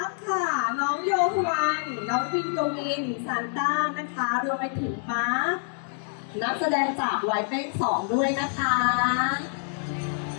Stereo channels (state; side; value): silent; right; 60 dB below the other